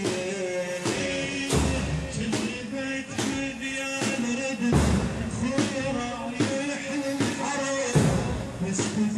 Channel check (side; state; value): both; identical; correlation 1.00